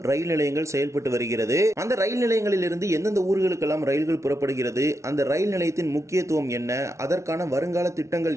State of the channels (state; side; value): late; left; 0.14 ms